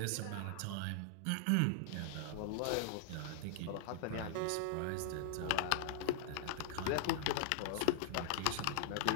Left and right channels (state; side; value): different; both; correlation -0.01